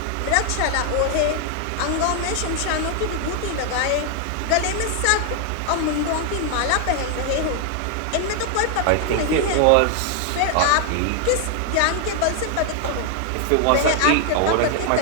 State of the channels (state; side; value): different; both; correlation 0.00